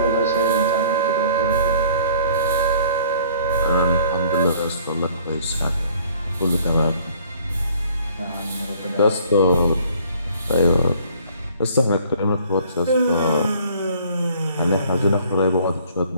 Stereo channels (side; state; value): both; inverted; correlation -0.55